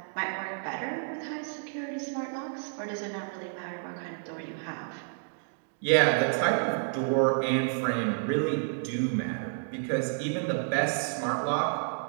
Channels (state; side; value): silent; left; digital silence